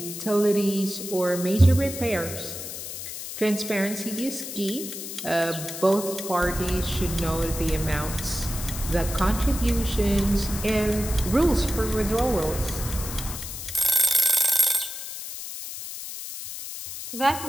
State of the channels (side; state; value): left; noise; hiss, 8 dB below the sound